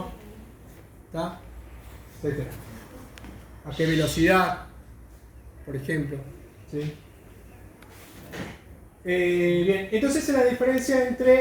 ¿tá? Etcétera. A qué velocidad, por ejemplo, ¿sí? Bien, entonces es la diferencia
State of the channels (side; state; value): both; identical; correlation 1.00